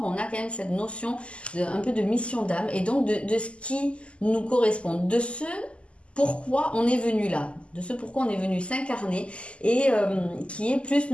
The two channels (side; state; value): right; late; 0.055 ms